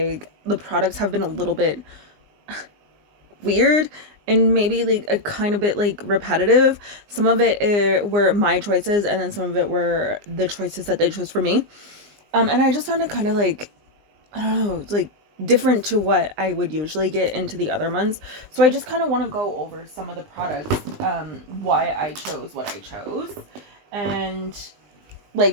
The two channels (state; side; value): late; left; 19 ms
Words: the products have been a little bit weird and maybe like a kind of bit like repetitive. Some of it were my choices, and then some of it were the choices that they chose for me. And I just found it kind of like I don't know, like different to what I would usually get into the other months. So I just kind of want to go over some of the products, why I chose what I chose, and